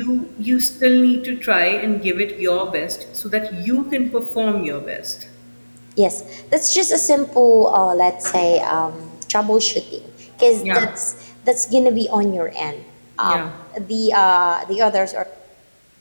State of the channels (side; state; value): both; inverted; correlation -1.00